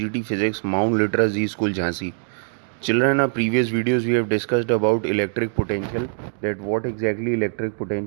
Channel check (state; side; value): silent; left; digital silence